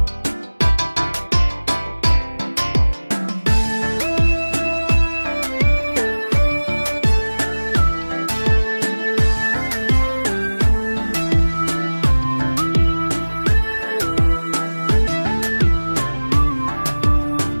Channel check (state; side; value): inverted; both; correlation -1.00